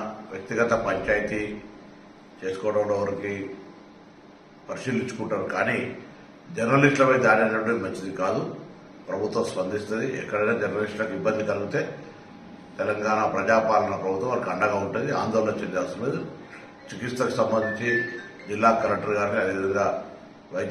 వ్యక్తిగత పంచాయతీ చేసుకోవడంలో వారికి పరిశీలించుకుంటారు. కానీ జర్నలిస్టులపై దాడి అనేటువంటి మంచిది కాదు. ప్రభుత్వం స్పందిస్తుంది. ఎక్కడైనా జర్నలిస్టులకు ఇబ్బంది కలిగితే తెలంగాణ ప్రజాపాలన ప్రభుత్వం వారికి అండగా ఉంటుంది. ఆందోళన చెందాల్సిన లేదు. చికిత్సకు సంబంధించి జిల్లా కలెక్టర్ గారిని అదేవిధంగా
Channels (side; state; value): both; identical; correlation 1.00